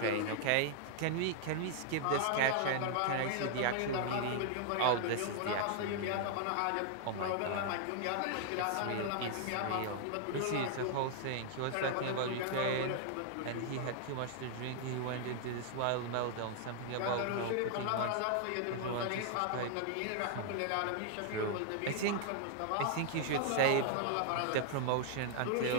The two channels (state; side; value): different; both; correlation 0.00